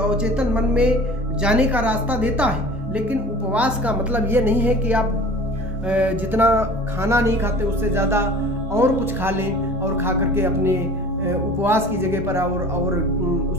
मन में जाने का रास्ता देता है। लेकिन उपवास का मतलब ये नहीं है कि आप जितना खाना नहीं खाते उससे ज़्यादा और कुछ खा लें और खा करके अपने उपवास की जगह पर और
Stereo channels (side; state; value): both; normal; correlation 0.42